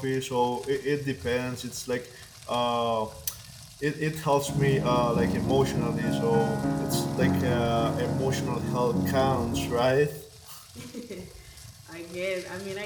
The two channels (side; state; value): both; identical; correlation 1.00